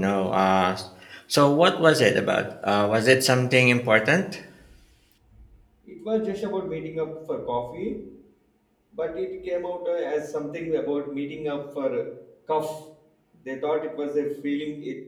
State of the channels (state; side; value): identical; both; correlation 1.00